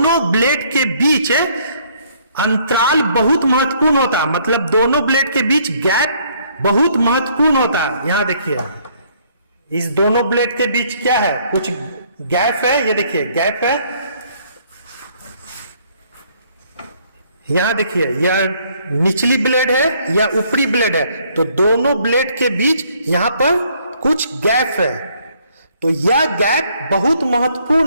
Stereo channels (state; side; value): inverted; both; correlation -0.64